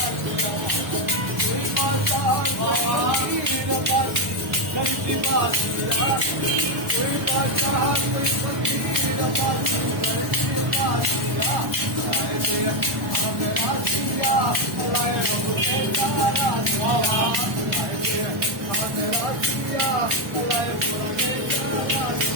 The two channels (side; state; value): left; late; 1.1 ms